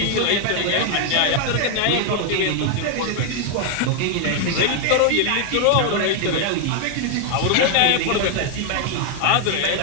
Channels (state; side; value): different; both; correlation 0.00